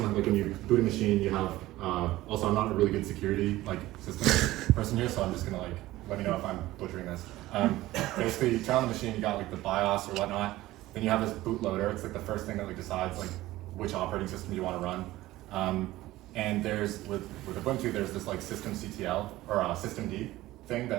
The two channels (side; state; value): left; quieter; 16.9 dB